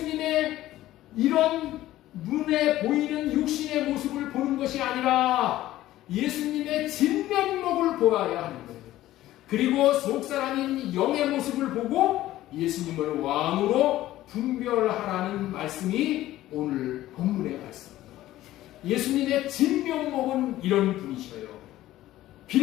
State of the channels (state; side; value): quieter; right; 14.9 dB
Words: 이런 눈에 보이는 육신의 모습을 보는 것이 아니라 예수님의 진면목을 보아야 하는 거예요. 그리고 속사람인 영의 모습을 보고 예수님을 왕으로 분별하라는 말씀이 오늘 본문의 말씀입니다. 예수님의 진면목은 이런 분이셔요.